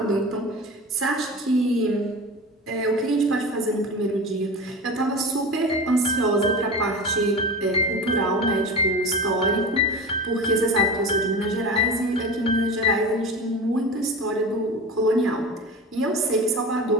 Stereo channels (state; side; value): normal; both; correlation 0.30